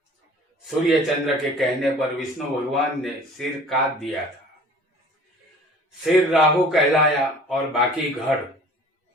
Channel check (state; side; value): normal; both; correlation 0.48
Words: सूर्य चंद्र के कहने पर विष्णु भगवान ने सिर काट दिया था। सिर राहु कहलाया और बाकी धड़